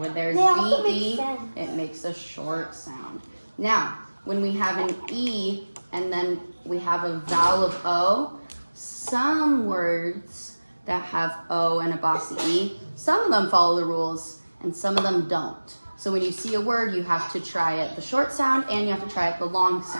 there's VE, it makes a short sound. Now, when we have an E and then we have a vowel of O, some words that have O and a bossy E, some of them follow the rules and some of them don't. So when you see a word, you have to try it the short sound and you have to try it the long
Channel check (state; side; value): inverted; both; correlation -1.00